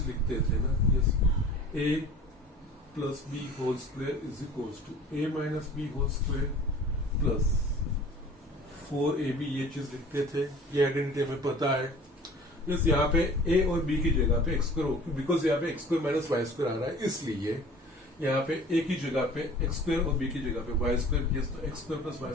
लिखते थे ना, yes a plus b whole square is equals to a minus b whole square plus 4ab, ये चीज लिखते थे। ये आइडेंटिटी हमें पता है। यस यहाँ पे a और b की जगह पे एक्स स्क्वायर, बिकॉज यहाँ पे x square minus y square आ रहा है, इसलिए यहाँ पे a की जगह पे एक्स स्क्वायर और b की जगह पे वाई स्क्वायर। यस तो x square plus y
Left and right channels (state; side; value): normal; both; correlation 0.45